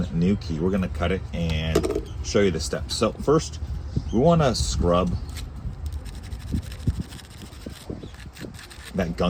new key. We're gonna cut it and show you the steps. So first, we wanna scrub that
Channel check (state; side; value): identical; both; correlation 1.00